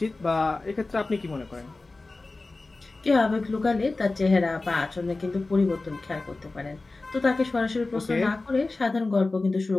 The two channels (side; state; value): right; quieter; 3.3 dB